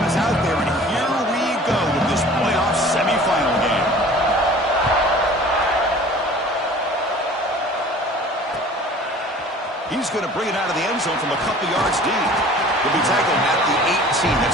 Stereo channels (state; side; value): normal; both; correlation 0.46